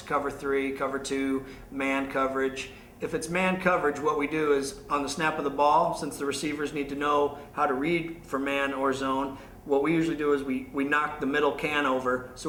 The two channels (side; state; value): both; identical; correlation 1.00